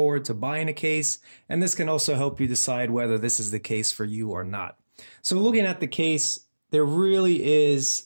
to buying a case, and this can also help you decide whether this is the case for you or not. So looking at the case, there really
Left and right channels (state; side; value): inverted; both; correlation -1.00